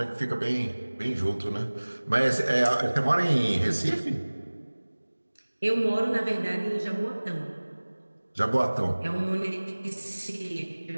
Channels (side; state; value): both; inverted; correlation -1.00